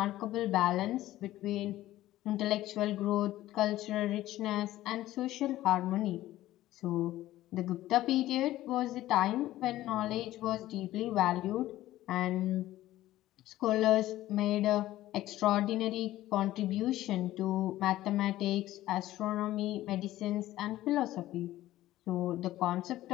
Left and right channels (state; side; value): quieter; right; 15.1 dB